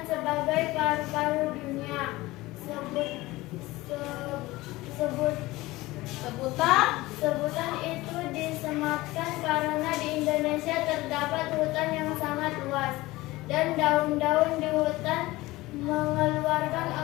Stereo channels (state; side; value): quieter; right; 19.3 dB